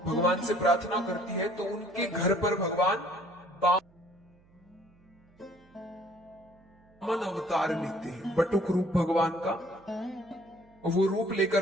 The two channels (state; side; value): noise; right; hum, 30 dB below the sound